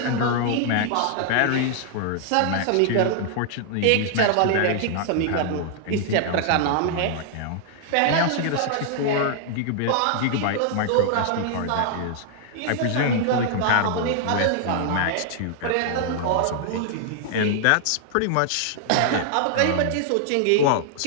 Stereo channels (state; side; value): different; both; correlation 0.00